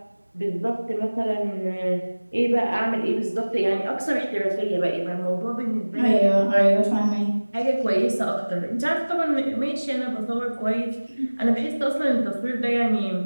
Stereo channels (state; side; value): inverted; both; correlation -1.00